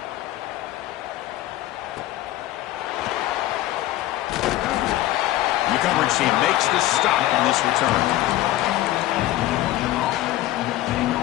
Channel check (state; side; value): quieter; right; 15.3 dB